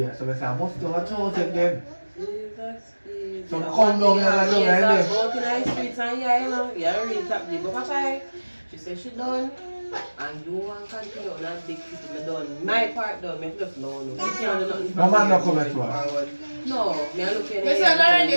So I say, I must do a toast again. Jesus. Some come down here and down there. Walking on the streets and yeah, you know, yeah, really top deep. But Papa, she said she done. And you want to continue on that big city, me done. My part done, me just know. You can't do nothing. My man not coming to us. No, me are looking at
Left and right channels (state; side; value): inverted; both; correlation -1.00